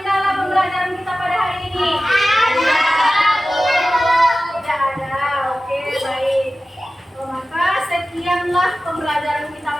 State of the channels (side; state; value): both; normal; correlation 0.95